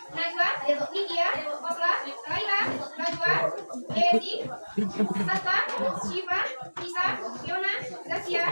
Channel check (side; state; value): both; inverted; correlation -1.00